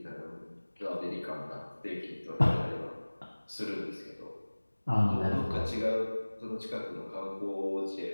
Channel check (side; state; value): both; inverted; correlation -1.00